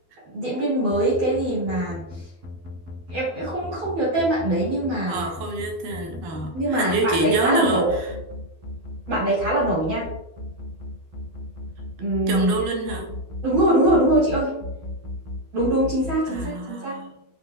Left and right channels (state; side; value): late; left; 12 ms